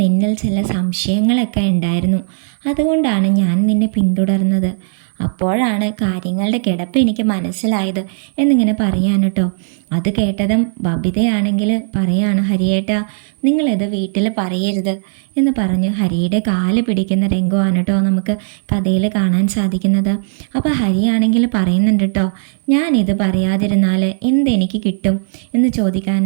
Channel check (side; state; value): left; silent; 56 dB below the other